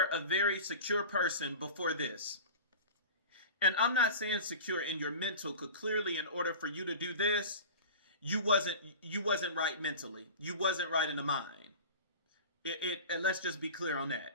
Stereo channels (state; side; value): inverted; both; correlation -0.35